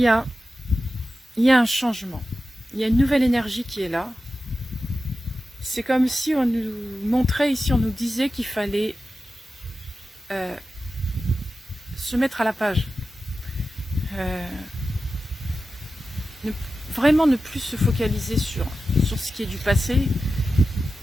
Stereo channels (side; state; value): both; normal; correlation 0.93